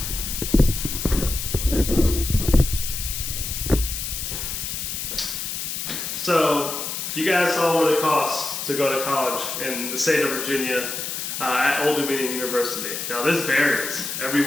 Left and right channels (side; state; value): left; noise; hiss, 4 dB below the sound